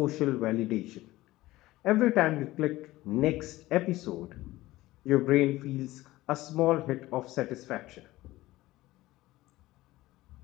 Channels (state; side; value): quieter; right; 17.6 dB